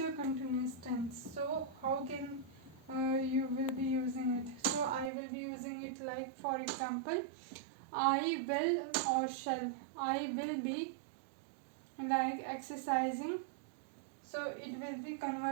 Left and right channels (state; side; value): drops out; left; at 5.1 s